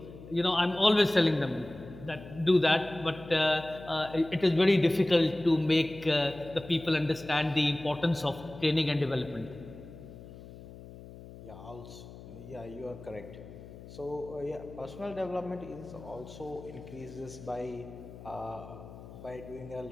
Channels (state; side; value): noise; left; hum, 16 dB below the sound